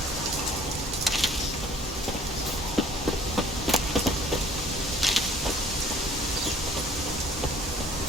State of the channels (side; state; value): both; normal; correlation 0.55